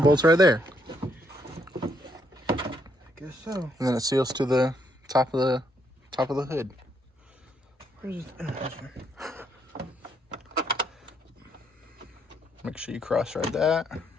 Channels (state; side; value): normal; both; correlation 0.73